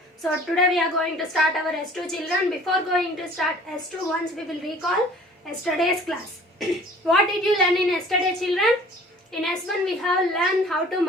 So today we are going to start our S2 children. Before going to start S2, once we will recall yesterday's class. What did you learn in yesterday children? In S1 we have learned how to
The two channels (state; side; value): normal; both; correlation 0.50